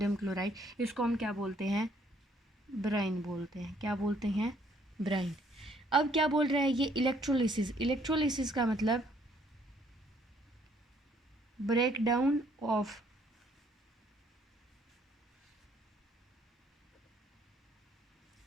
chloride, इसको हम क्या बोलते हैं? ब्राइन बोलते हैं। क्या बोलते हैं? ब्राइन। अब क्या बोल रहा है ये? इलेक्ट्रोलिसिस। इलेक्ट्रोलिसिस का मतलब break down of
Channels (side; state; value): both; normal; correlation 0.65